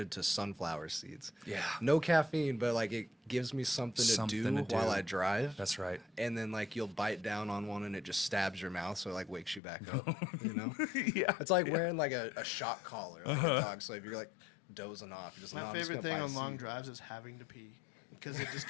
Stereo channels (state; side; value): drops out; right; at 9.6 s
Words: to sunflower seeds. Yeah. No caffeine, but like it gives me something to do while I drive. That's right. And then like you'll bite down on one and it just stabs your mouth, so it like wakes you back up. You know? Yeah. It's like wearing like a shock collar, like a dog. So if you're like dozing off, you're just My "No, I'm just favorite gonna thing bite on a long seed." drives is having to pee because it just